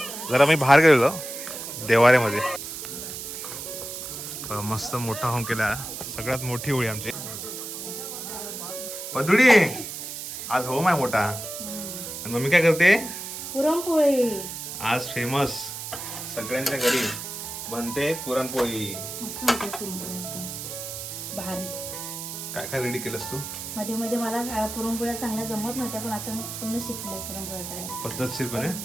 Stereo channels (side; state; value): right; noise; hiss, 8 dB below the sound